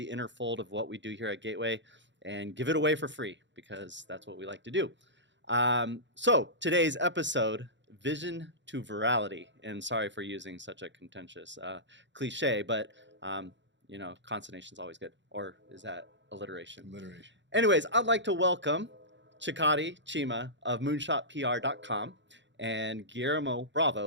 inner fold of what we do here at Gateway and give it away for free because that's what we like to do. So today's episode, Vision to Virality. And sorry for using such a contentious cliche, but consonation is always good. Or is that alliteration? Alliteration. Anyways, I'd like to welcome Chikodi Chima of moonshotpr.com and Guillermo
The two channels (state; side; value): late; left; 0.53 ms